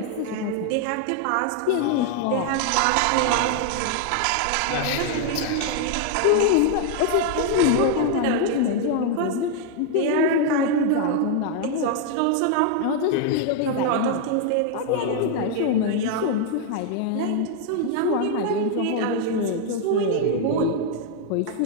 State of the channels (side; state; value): both; different; correlation 0.00